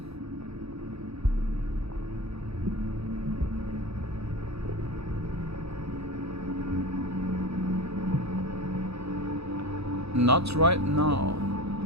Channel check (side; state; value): left; late; 0.78 ms